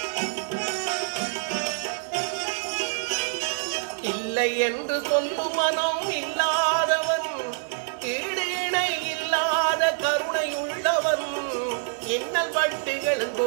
இல்லை என்று சொல்லும் மனம் இல்லாதவன், ஈடு இணை இல்லாத கருணை உள்ளவன், இன்னல் வட்டுகள்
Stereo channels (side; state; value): left; silent; 61 dB below the other